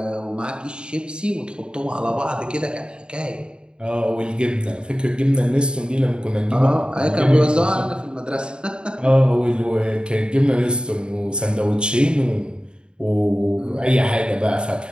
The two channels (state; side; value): late; left; 0.051 ms